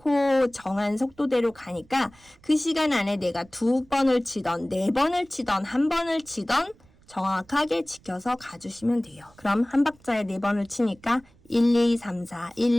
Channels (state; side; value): noise; right; rumble, 29 dB below the sound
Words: 정한 속도대로 가니까 그 시간 안에 내가 2번을 치던 4번을 치던 1번을 치던 정확하게 지켜서 가주시면 돼요. 그럼 한 박자에 4번을 치니까 1, 2, 3, 4,